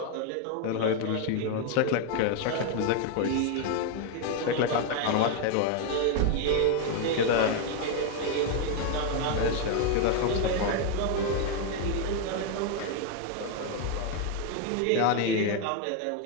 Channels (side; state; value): both; different; correlation 0.01